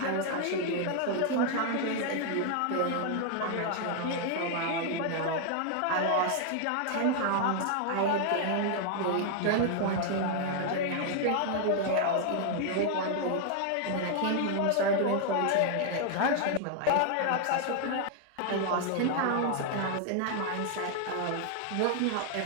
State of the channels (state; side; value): different; both; correlation 0.00